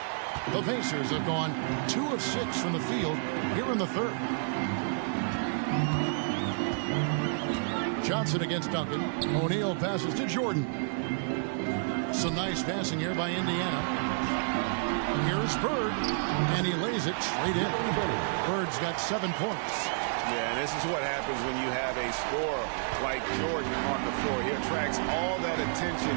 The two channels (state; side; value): silent; left; 58 dB below the other